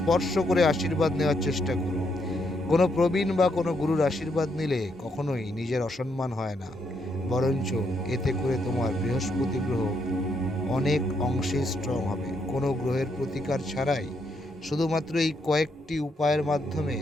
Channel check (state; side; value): normal; both; correlation 0.77